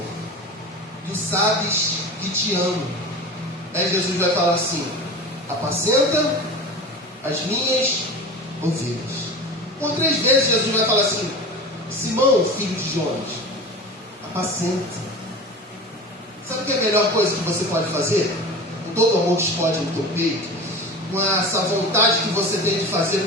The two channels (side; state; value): both; normal; correlation 0.32